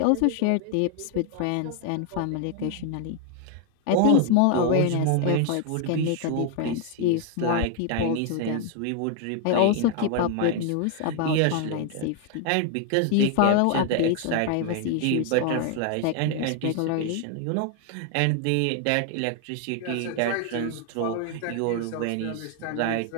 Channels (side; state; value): both; different; correlation 0.00